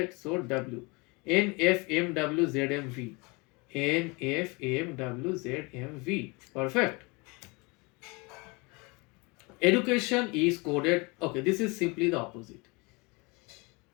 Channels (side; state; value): right; quieter; 27.4 dB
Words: So W. NFMWZMV. NFMWZMV. Perfect. Education is coded. Okay, this is simply the opposite.